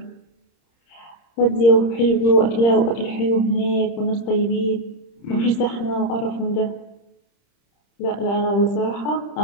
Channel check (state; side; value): late; right; 30 ms